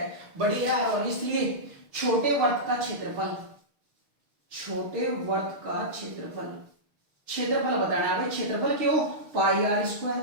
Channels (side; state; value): left; late; 6.6 ms